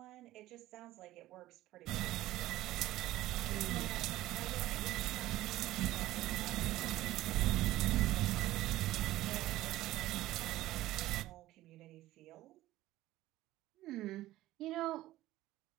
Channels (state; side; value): quieter; left; 15.9 dB